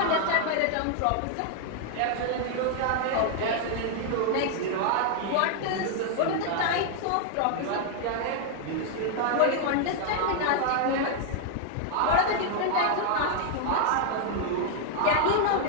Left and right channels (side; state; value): both; different; correlation 0.00